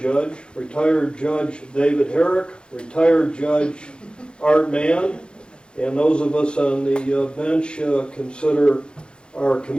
David Herrick, retired Judge Art Mann, and those of us on the bench consider our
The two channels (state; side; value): late; right; 0.052 ms